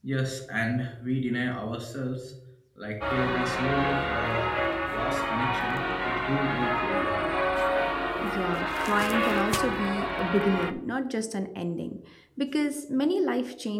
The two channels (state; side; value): identical; both; correlation 1.00